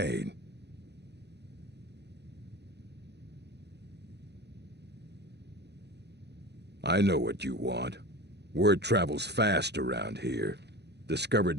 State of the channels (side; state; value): left; late; 0.49 ms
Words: I know what you want. Word travels fast around here.